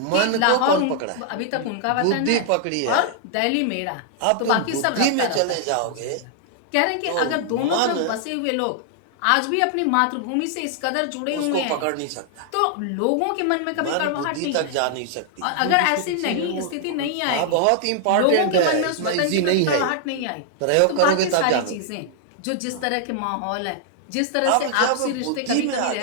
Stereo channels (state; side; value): different; both; correlation 0.00